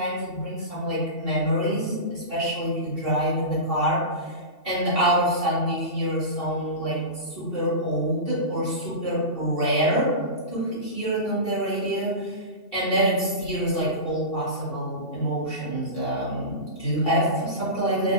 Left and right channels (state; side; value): late; right; 2.7 ms